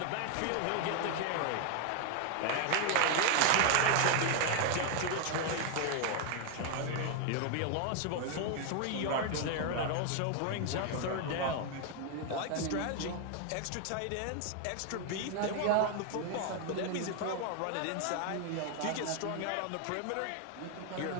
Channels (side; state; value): both; different; correlation 0.00